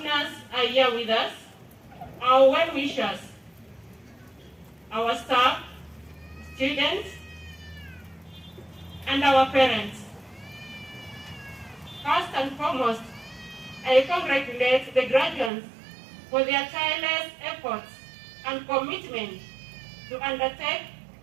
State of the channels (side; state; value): left; drops out; at 15.5 s